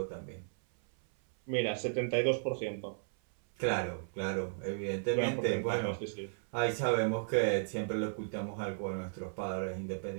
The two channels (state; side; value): silent; left; 55 dB below the other